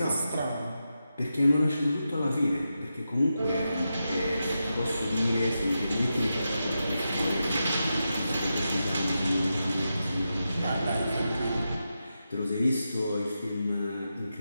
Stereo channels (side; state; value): both; inverted; correlation -0.89